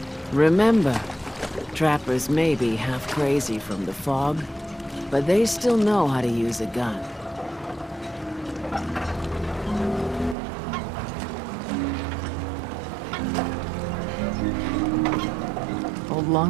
Remember, trappers may be half crazy from the fog, but they still know how to use a gun. Old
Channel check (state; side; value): drops out; left; at 10.4 s